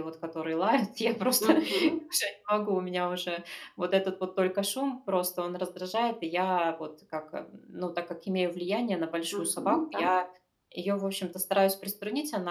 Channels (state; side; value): identical; both; correlation 1.00